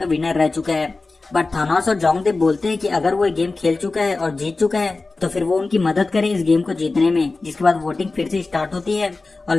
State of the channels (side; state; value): right; quieter; 3.6 dB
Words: विनर रह चुका है। बट थानोस और जोंगडे बोलते हैं कि अगर वो ये गेम खेल चुका है और जीत चुका है तो फिर वो उनकी मदद करे इस गेम को जीतने में। जिसके बाद वोटिंग फिर से स्टार्ट होती है और